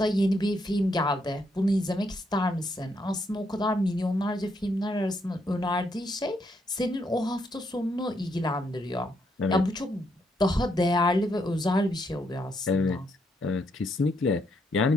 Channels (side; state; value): both; normal; correlation 0.76